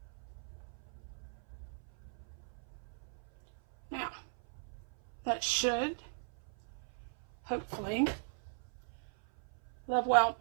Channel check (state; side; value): silent; left; 52 dB below the other